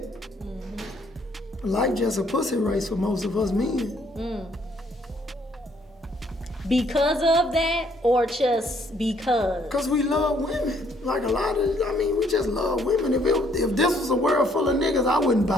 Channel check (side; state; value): both; normal; correlation 0.66